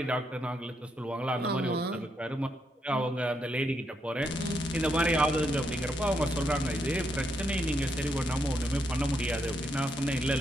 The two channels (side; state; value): both; normal; correlation 0.79